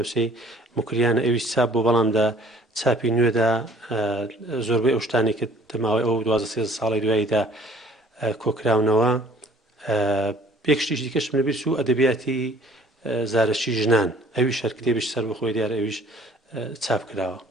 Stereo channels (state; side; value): normal; both; correlation 0.54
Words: موکریانە ئەویش چاپ بوو بەڵام چاپی نوێدا زۆربەی ئەو شتانی کە دەماوەی ئەو 12 ساڵی دواییدا کۆکراونەوە. پێکشتیش دیکەشم لەبیر چوو ئەدەبیاتی زارەکی ژنان ئەویش هەر کتێبیش سەر بەخۆی دیارە ئەویش چاپ کراوە.